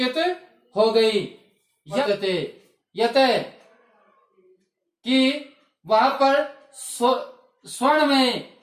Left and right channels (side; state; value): both; identical; correlation 1.00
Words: हो गई। यत कि वहां पर स्वर्ण में